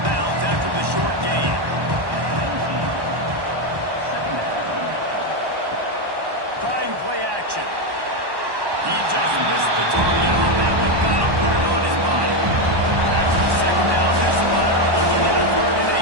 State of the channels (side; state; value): left; late; 1.1 ms